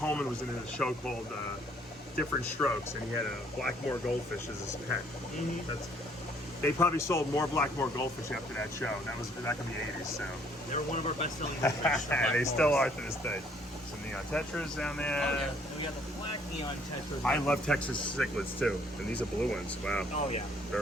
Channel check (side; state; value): both; normal; correlation 0.63